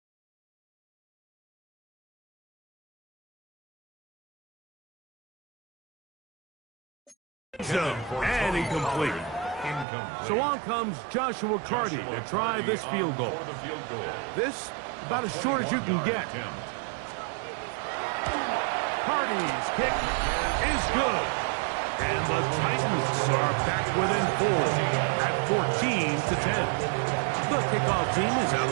And incomplete. So on comes Joshua Carty to try this field goal. This, about as short as you can get. Carty's kick is good. And the Titans are back within 4 at 14-10. The kickoff team is out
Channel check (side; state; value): left; drops out; at 9.9 s